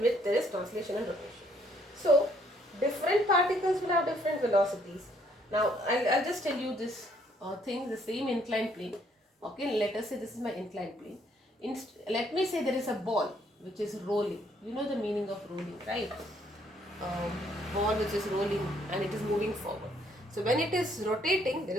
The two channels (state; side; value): normal; both; correlation 0.67